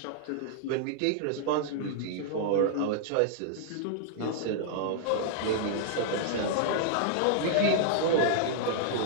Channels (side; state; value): both; different; correlation -0.01